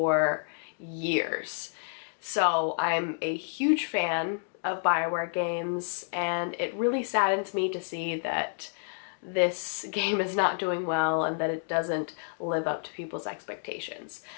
years. So I'm a huge fan of Bioware games, and it really saddens me to see that this game is not doing well and that it doesn't live up to people's expectations.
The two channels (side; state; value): right; silent; digital silence